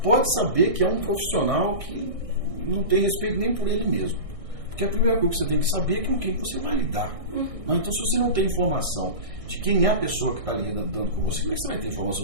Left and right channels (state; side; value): late; left; 1.6 ms